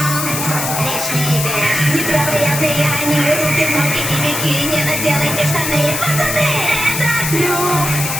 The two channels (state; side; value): noise; left; hiss, 3 dB below the sound